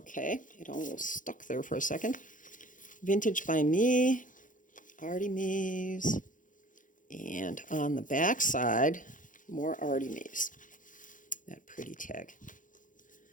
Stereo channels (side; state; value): right; late; 0.38 ms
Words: it almost stuck there for a second. VintageByMe, Artymaze, and on the back side, more Artymaze. That pretty tag.